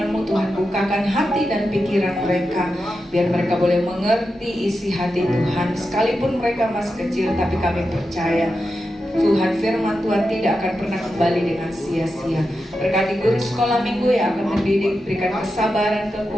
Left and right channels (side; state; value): both; normal; correlation 0.89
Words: Tuhan. Bukakan hati dan pikiran mereka, biar mereka boleh mengerti isi hati Tuhan. Sekalipun mereka masih kecil, tapi kami percaya Tuhan, firman Tuhan tidak akan pernah kembali dengan sia-sia. Berkati guru sekolah minggu yang akan mendidik, berikan kesabaran,